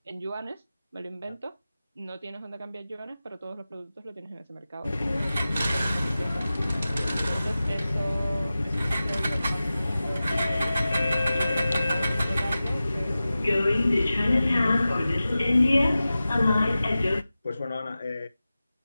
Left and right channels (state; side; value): inverted; both; correlation -0.95